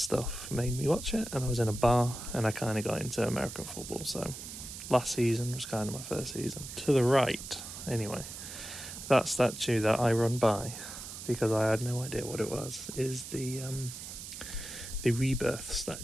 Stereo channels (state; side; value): noise; right; hiss, 10 dB below the sound